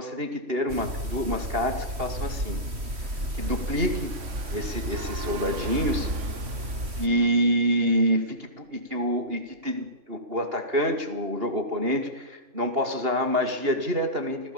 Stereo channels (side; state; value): left; late; 3.1 ms